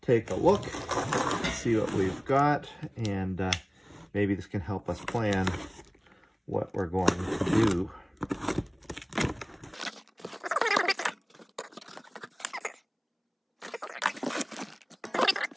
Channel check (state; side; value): identical; both; correlation 1.00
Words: take a look, see what we've got, and maybe this can help us plan what we're going to do.